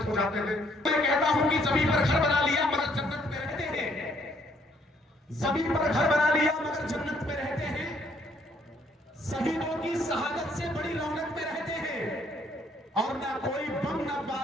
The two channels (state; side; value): normal; both; correlation 0.66